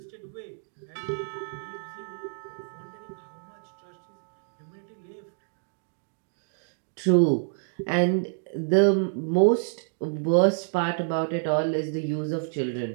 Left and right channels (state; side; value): silent; left; digital silence